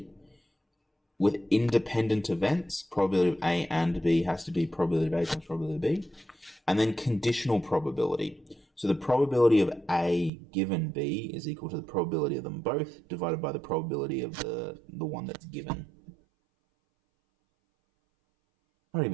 With independent events, probability of A and B has to be probability of A times probability of B. And then conditional probability. So the probability of A given B is equal to the probability of them both divided by the probability of the one that's given. Not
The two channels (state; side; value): drops out; left; at 10.3 s